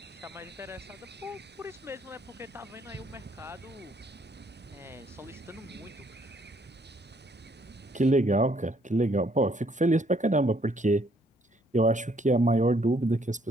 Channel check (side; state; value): both; normal; correlation 0.67